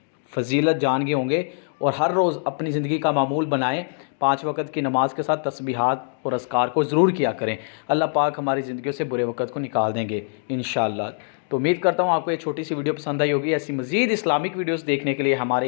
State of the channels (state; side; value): silent; right; digital silence